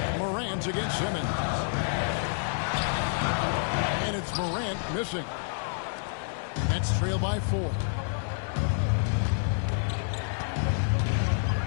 Morant against Simmons. And it's Morant missing. Nets trail by 4.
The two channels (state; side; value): silent; right; digital silence